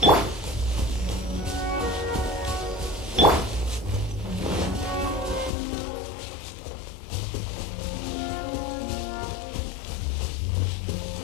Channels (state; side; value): drops out; right; at 5.5 s